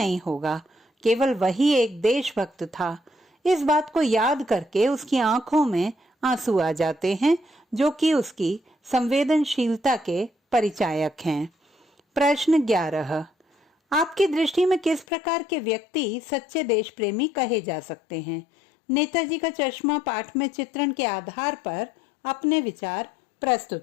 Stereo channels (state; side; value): drops out; right; at 15.1 s